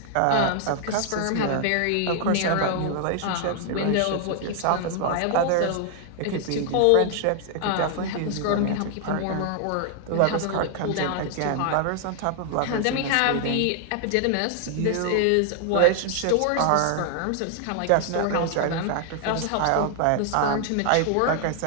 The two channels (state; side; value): different; both; correlation 0.00